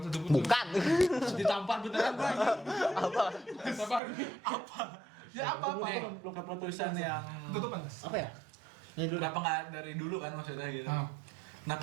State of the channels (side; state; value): left; drops out; at 4.0 s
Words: satupun? Bukan. Ditampar beneran gue. Sabar. Ya apa? Lu keputusan yang Tutupan. Apa ya? Ini dulu. kenapa nggak dari dulu kan maksudnya gitu? Ah.